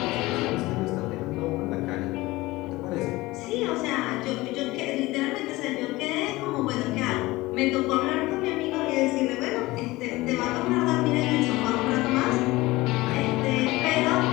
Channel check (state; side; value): quieter; right; 19.9 dB